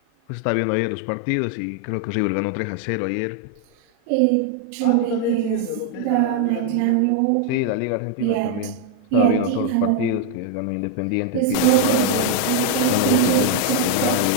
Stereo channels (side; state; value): both; different; correlation 0.00